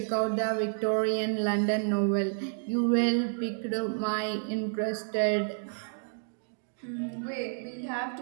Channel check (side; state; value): left; silent; digital silence